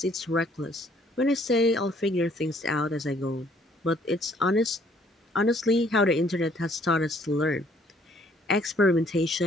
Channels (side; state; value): both; normal; correlation 0.62